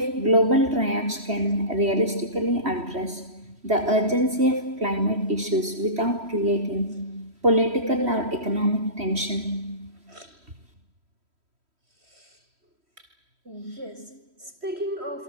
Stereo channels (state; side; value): late; left; 3.1 ms